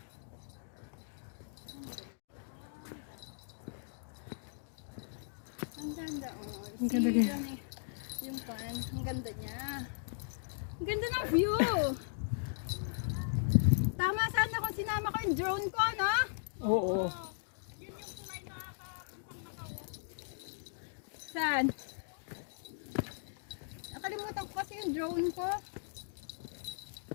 Ang ganda oh. Ang ganda niya. Yung pan, ang ganda niya. Ang ganda ng view. Tama sana kung sinama ko yung drone ko, no? Oo. Saan? Nakalimutan ko kasi yung drone ko.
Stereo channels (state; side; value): silent; right; digital silence